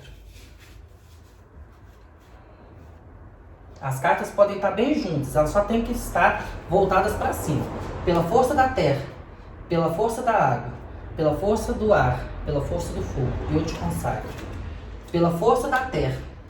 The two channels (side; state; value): both; identical; correlation 1.00